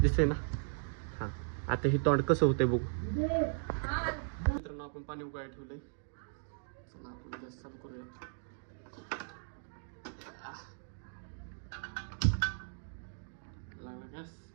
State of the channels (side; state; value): left; silent; digital silence